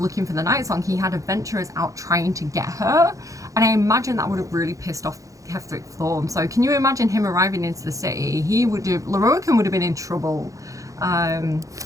for the Night Song. He had adventurers out trying to get her, and I imagine that would have really pissed off Ketheric Thorm. So can you imagine him arriving into the city? Loroakan would have been in trouble.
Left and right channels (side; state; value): left; late; 0.16 ms